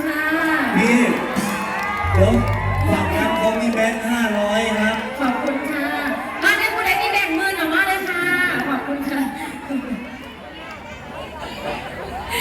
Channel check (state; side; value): identical; both; correlation 1.00